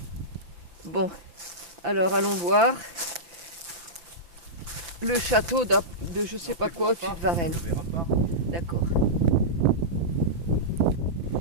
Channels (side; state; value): left; late; 5.9 ms